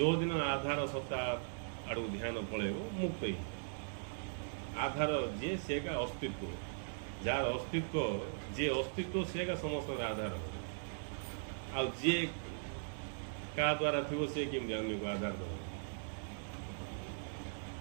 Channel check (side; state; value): left; silent; digital silence